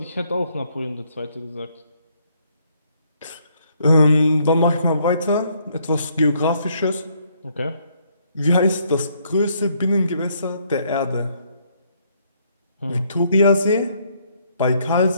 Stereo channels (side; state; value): both; inverted; correlation -0.69